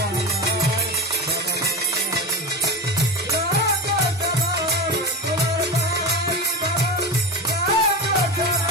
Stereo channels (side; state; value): both; normal; correlation 0.22